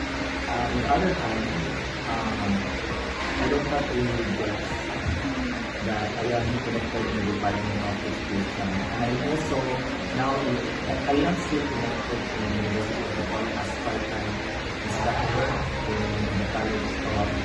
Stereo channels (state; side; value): identical; both; correlation 1.00